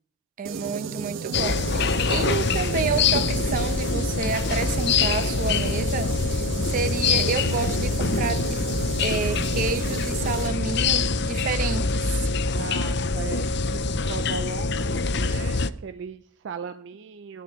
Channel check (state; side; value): normal; both; correlation 0.26